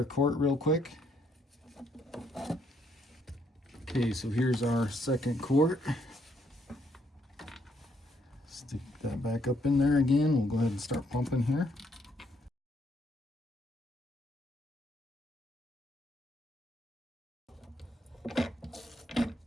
quart real quick. Okay, so here's our second quart. Stick that back up in there again. We'll go ahead and start pumping here.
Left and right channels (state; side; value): normal; both; correlation 0.71